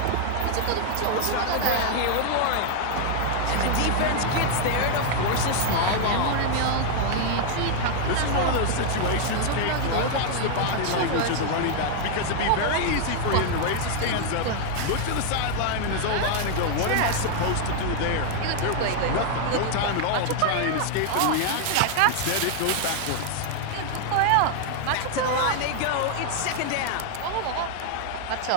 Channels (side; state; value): both; different; correlation 0.00